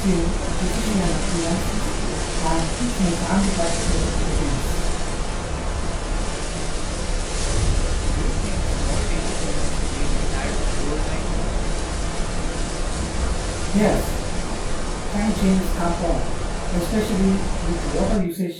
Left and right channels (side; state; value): both; identical; correlation 1.00